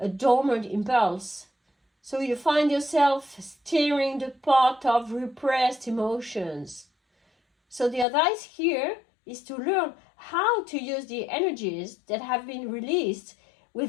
dormant impulse. So you find yourself stirring the pot of repressed emotions. So the advice here is to learn how to use the energies that have been released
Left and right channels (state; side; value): drops out; right; at 8.1 s